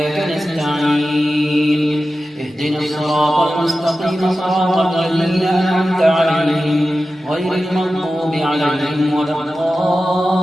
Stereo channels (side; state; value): both; normal; correlation 0.94